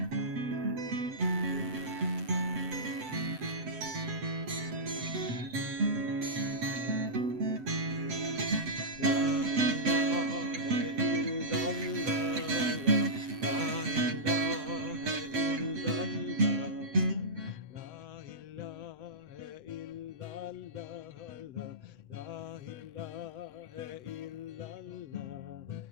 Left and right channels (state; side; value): late; left; 7.8 ms